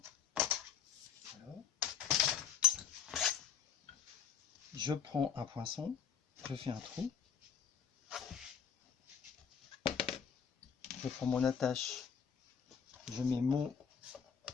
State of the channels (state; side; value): quieter; right; 7.4 dB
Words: Voilà. Je prends un poinçon, je fais un trou. je prends mon attache, je mets mon